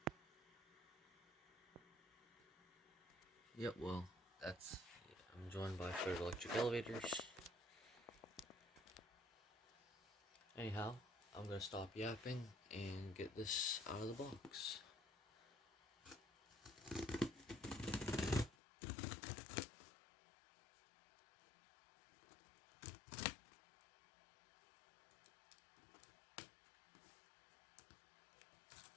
Yep, well, I'm joined by Ford Electric Elevators. Anyhow, I'm gonna stop yapping and get this out of the box.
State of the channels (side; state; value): right; drops out; at 18.6 s